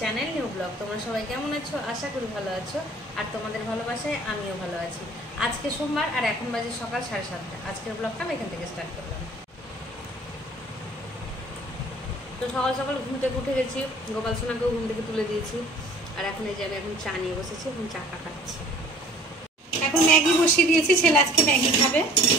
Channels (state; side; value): normal; both; correlation 0.51